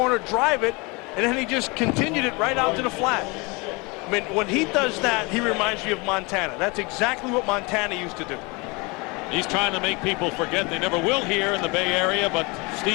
drive it, and then he just continued it right out to the flat. I mean, when he does that, he reminds me of Montana. That's exactly what Montana used to do. He's trying to make people forget. They never will here in the Bay Area, but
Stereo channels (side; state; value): right; quieter; 27.4 dB